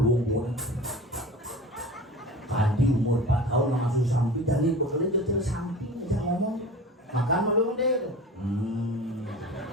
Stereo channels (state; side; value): normal; both; correlation 0.36